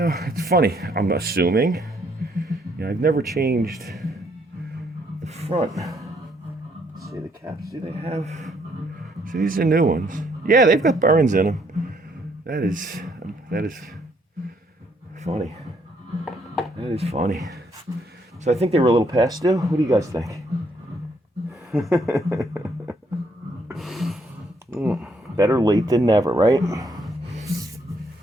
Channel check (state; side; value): normal; both; correlation 0.70